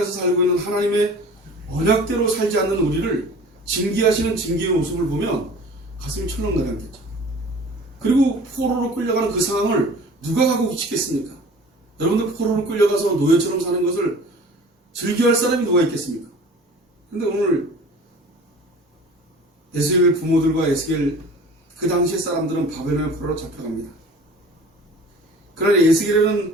살고 있는 하나님의 언약대로 살지 않는 우리를 징계하시는 징계의 모습을 보면 가슴이 철렁 내려앉겠죠. 그리고 포로로 끌려가는 그 상황을 누가 가고 싶겠습니까? 여러분들 포로로 끌려가서 노예처럼 사는 것을 즐겨할 사람이 누가 있겠습니까? 근데 오늘 에스겔 부모들과 에스겔 그 당시의 사람들은 바벨론의 포로로 잡혀갑니다. 그러나 에스겔이라는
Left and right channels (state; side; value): normal; both; correlation 0.44